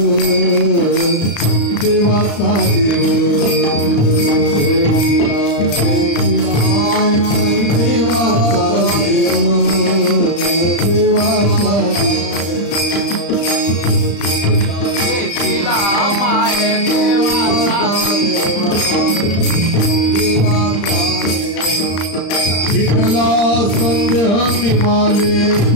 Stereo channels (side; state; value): right; late; 35 ms